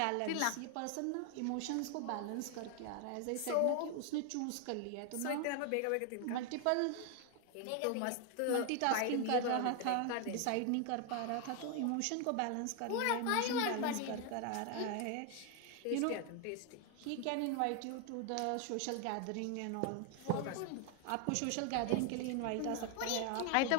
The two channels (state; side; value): different; both; correlation 0.00